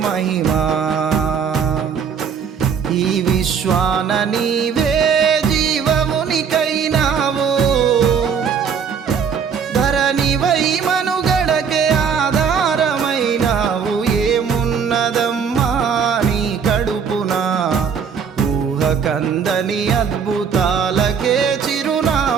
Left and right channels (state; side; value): quieter; left; 6.7 dB